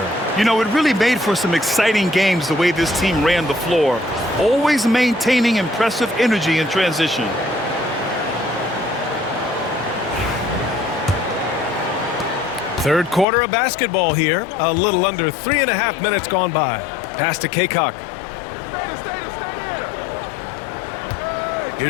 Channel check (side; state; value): right; drops out; at 13.2 s